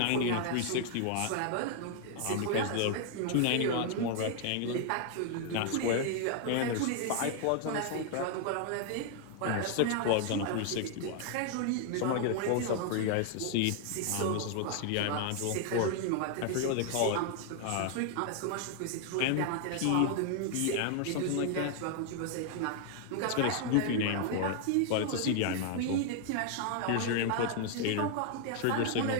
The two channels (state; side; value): different; both; correlation 0.00